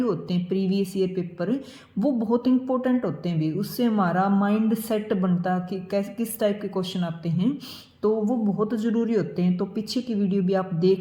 होते हैं, प्रीवियस ईयर पेपर, वो बहुत इंपॉर्टेंट होते हैं भी। उससे हमारा माइंड सेट बनता कि कैसे किस टाइप के क्वेश्चन आते हैं, तो वो बहुत ज़रूरी होते हैं। तो पीछे की वीडियो भी आप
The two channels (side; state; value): both; identical; correlation 1.00